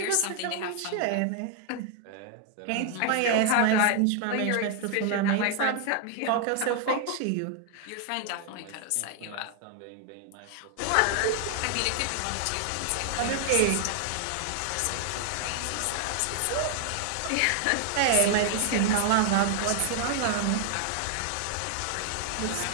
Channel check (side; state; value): both; different; correlation 0.00